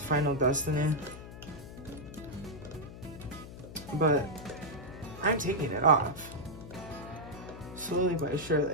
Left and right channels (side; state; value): left; noise; hum, 13 dB below the sound